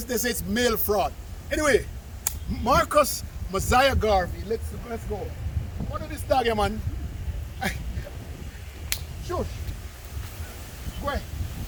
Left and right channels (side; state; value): both; identical; correlation 1.00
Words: say it's mail fraud. Anyway, Marcus Mosiah Garvey, let's go. What is this dog here, man? Shush. Go ahead.